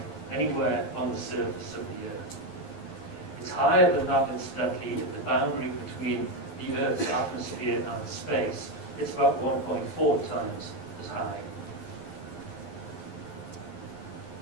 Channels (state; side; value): late; right; 11 ms